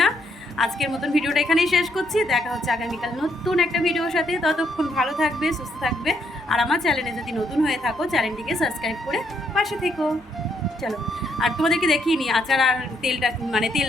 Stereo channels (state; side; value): normal; both; correlation 0.74